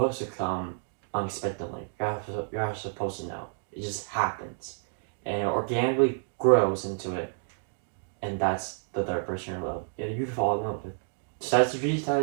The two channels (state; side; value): silent; left; digital silence